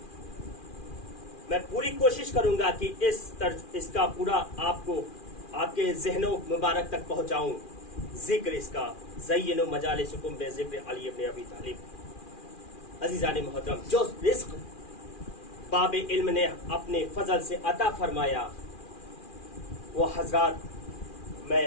मैं पूरी कोशिश करूंगा कि इसका पूरा आपको आपके ज़हनों मुबारक तक पहुंचाऊं। जिक्र इसका ज़य्यिनू मजालिसिकुम बिज़िक्र अली इब्न अबी तालिब। अज़ीज़ान मुहतरम, जो रिज़्क़ बाब इल्म ने अपने फजल से अता फरमाया वो हजरात मैं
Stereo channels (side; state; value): right; late; 2.4 ms